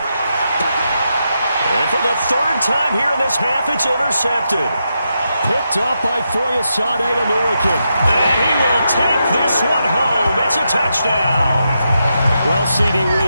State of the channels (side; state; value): both; inverted; correlation -0.85